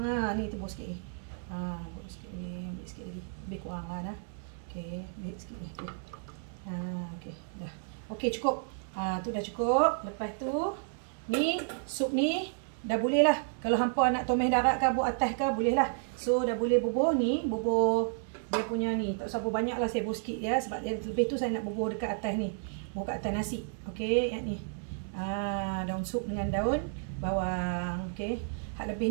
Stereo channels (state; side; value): silent; left; 57 dB below the other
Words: Ni tebus sikit ni. Tebus sikit ni, ambil sikit lagi. Lebih kurang lah dah. Okey, ambil sikit ni. Okey, dah. Okey, cukup. Tu dah cukup. Lepas tu ni sup ni dah boleh lah. Kalau hampa nak tomeh darat ke buat atas ke boleh lah. So dah boleh bubuh ni, bubuh dia punya ni. Tak usah bubuh banyak lah, saya bubuh sikit ya. Sebab lebih tu saya nak bubuh dekat atas ni. Bubuh kat atas nasi. Okey, yang ni. Daun sup dengan daun bawang. Okey. Hak lebih